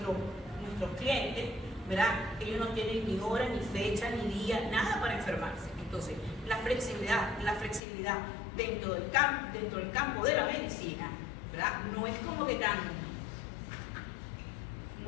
clientes, ¿verdad?, ellos no tienen ni hora, ni fecha, ni día, nada para enfermarse. Entonces, la flexibilidad dentro del campo de la medicina, ¿verdad?, no es como que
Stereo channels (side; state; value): right; drops out; at 7.8 s